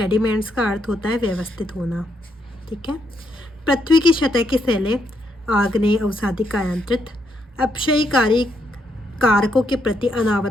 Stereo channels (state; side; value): normal; both; correlation 0.77